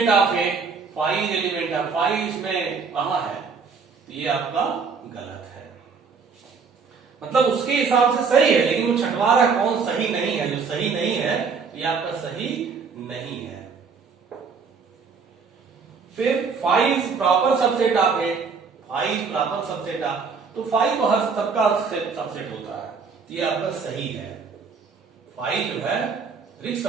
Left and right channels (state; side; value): quieter; left; 5.3 dB